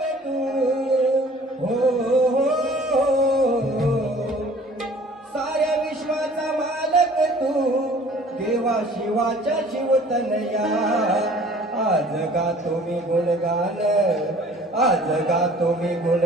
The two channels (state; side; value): normal; both; correlation 0.51